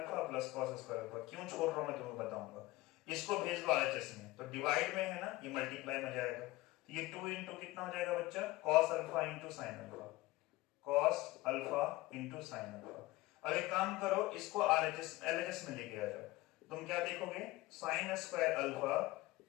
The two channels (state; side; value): quieter; right; 19.3 dB